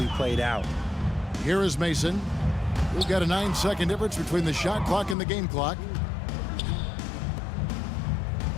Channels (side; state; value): right; drops out; at 5.2 s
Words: played out. Here is Mason. We've got a 9-second difference between the shot clock and the game clock.